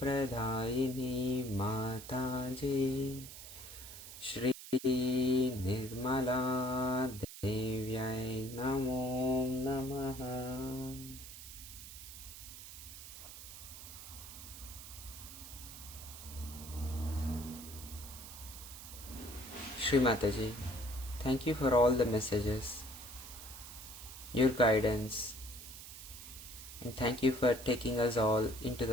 Pradayini Mataji Shri Nirmala Devyai Namo Namaha. Shri Mataji, thank you for all the messages, your guidance, and thank you for taking us all into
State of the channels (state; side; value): noise; right; hiss, 13 dB below the sound